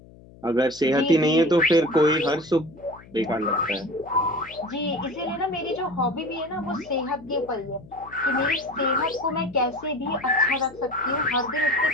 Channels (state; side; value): noise; left; hum, 22 dB below the sound